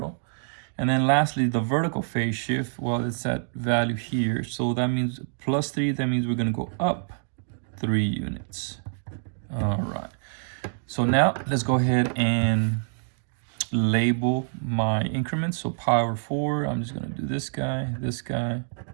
And then lastly, the vertical phase shift, well, it's that value here. So that means +3, that means we're going to go up 3 units. All right. So now let's go ahead and label my increments. So pi over 4, I'm just going to do this guy.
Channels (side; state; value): left; silent; digital silence